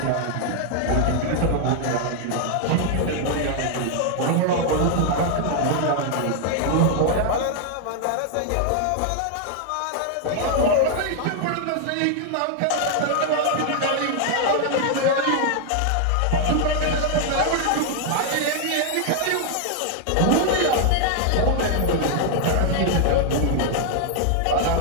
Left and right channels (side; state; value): both; different; correlation 0.00